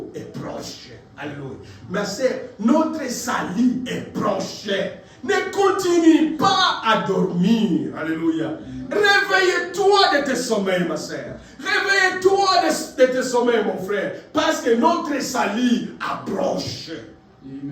est proche, alléluia. Ma sœur, notre salut est proche. Ne continue pas à dormir, alléluia. Réveille-toi de tes sommeils, ma sœur. Réveille-toi de tes sommeils, mon frère, parce que notre salut approche.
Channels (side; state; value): both; identical; correlation 1.00